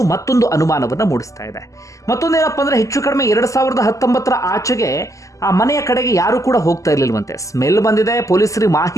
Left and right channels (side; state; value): right; late; 0.16 ms